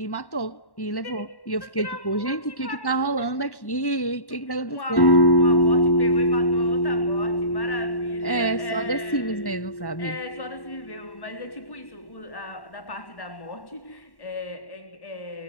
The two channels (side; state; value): right; late; 1.1 ms